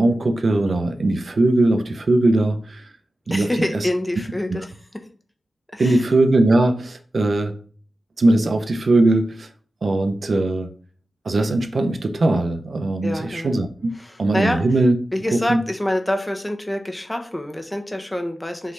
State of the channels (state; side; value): normal; both; correlation 0.93